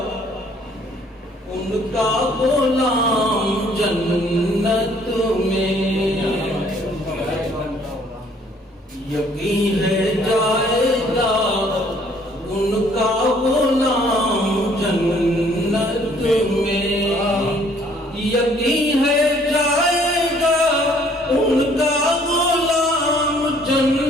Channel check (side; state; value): both; normal; correlation 0.61